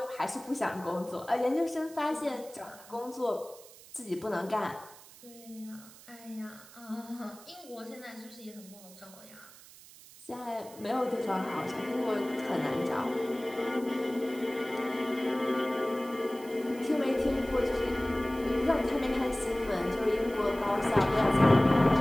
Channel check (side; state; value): right; noise; hiss, 20 dB below the sound